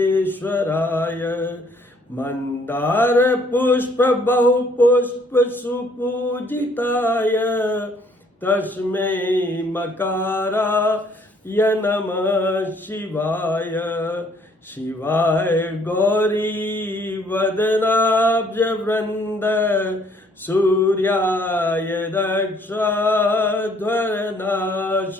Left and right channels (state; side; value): normal; both; correlation 0.63